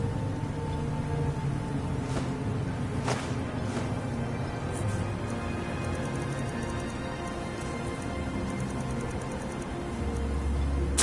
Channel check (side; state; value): both; identical; correlation 1.00